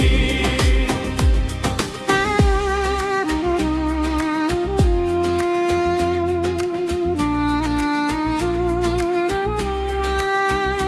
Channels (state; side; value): identical; both; correlation 1.00